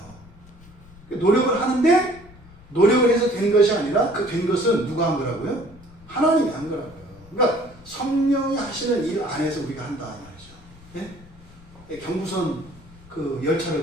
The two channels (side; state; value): left; noise; rumble, 22 dB below the sound